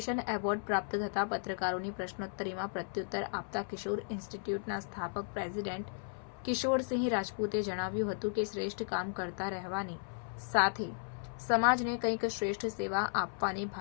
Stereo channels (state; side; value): silent; right; 54 dB below the other